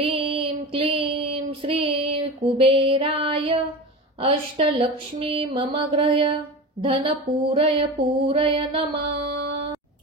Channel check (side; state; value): both; normal; correlation 0.27